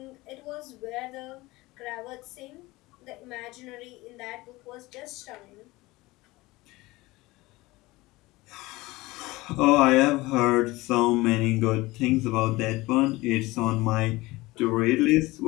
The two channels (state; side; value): quieter; right; 20.6 dB